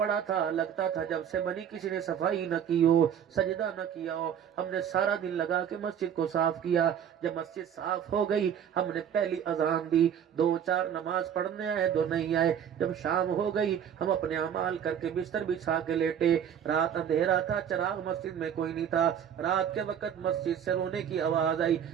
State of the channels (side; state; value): left; quieter; 8.9 dB